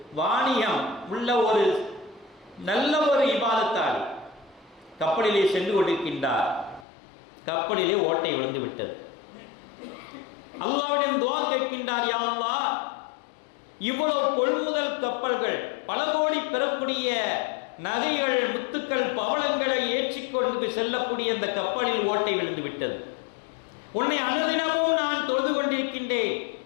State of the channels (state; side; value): drops out; right; at 6.9 s